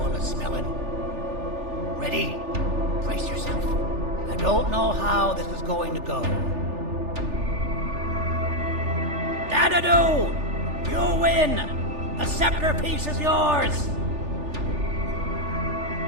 of smelling. Ready? Brace yourself. I don't know how this is going to go. Dadadoo! You win! The scepter piece is yours!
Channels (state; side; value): late; left; 3.4 ms